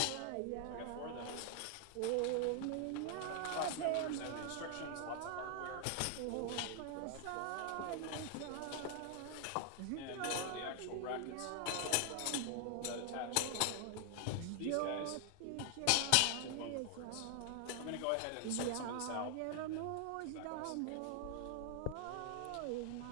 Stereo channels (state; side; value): different; both; correlation 0.00